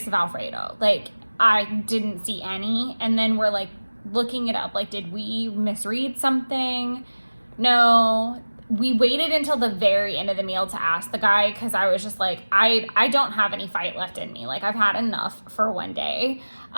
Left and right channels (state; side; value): inverted; both; correlation -1.00